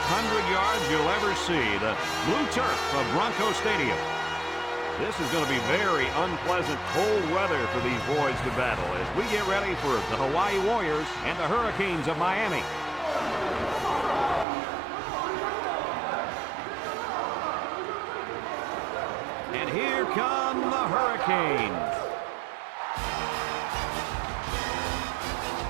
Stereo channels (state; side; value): drops out; left; at 14.5 s